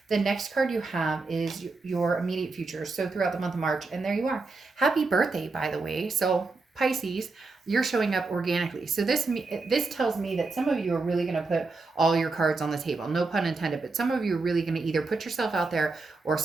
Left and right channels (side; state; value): left; quieter; 3.8 dB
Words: The next card you have is your immediate future. So throughout the month of March, and there you are. Happy birthday, by the way. So Pisces, you're showing up organically. So this tells me that some of you are really going to put all your cards on the table. No pun intended, but some of you are really going to either put yourself out there, or